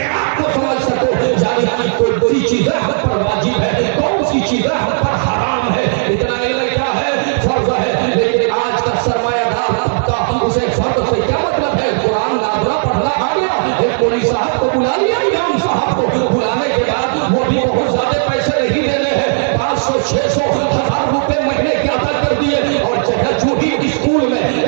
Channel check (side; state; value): left; silent; 68 dB below the other